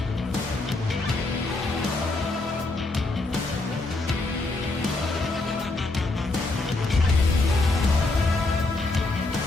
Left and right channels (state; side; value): quieter; right; 3.2 dB